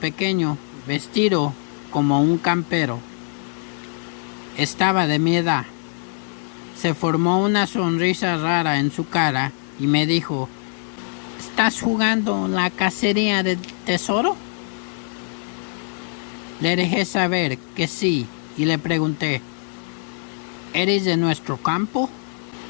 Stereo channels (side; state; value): right; silent; 56 dB below the other